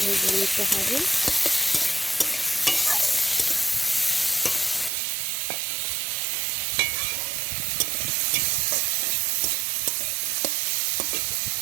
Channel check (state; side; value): drops out; left; at 4.9 s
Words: ভেজে নিতে হবে।